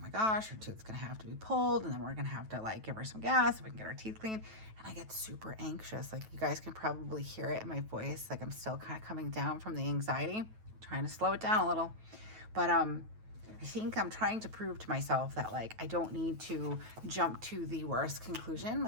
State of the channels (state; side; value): late; left; 9.2 ms